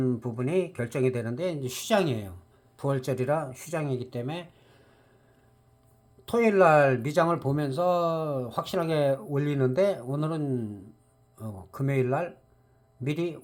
부분이 결정이 되는데 이제 휴장이에요. 부활절이라 휴장이기 때문에 토요일 날 미장을 보면서 확실하게 올리는데 오늘은 금요일 날 미리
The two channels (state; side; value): identical; both; correlation 1.00